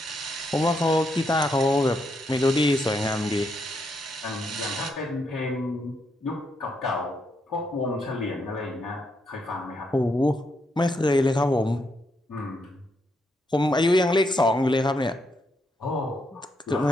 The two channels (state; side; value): normal; both; correlation 0.78